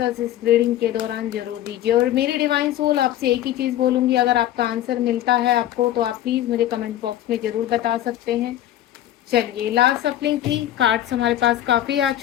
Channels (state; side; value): quieter; right; 12.8 dB